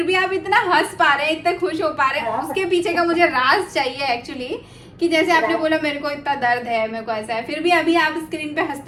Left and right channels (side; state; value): both; identical; correlation 1.00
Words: भी आप इतना हंस पा रहे हैं, इतने खुश हो पा रहे हैं। हाँ। उसके पीछे का मुझे राज चाहिए एक्चुअली, कि जैसे आपने बोला मेरे को इतना दर्द है, मेरे को ऐसा है, फिर भी अभी आप स्क्रीन पे